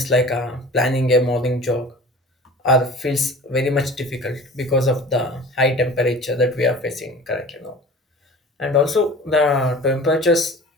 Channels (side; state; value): both; normal; correlation 0.41